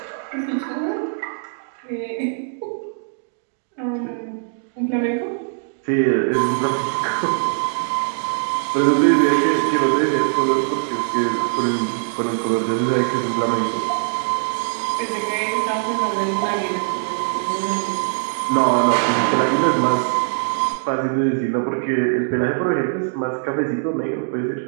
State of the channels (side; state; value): left; silent; digital silence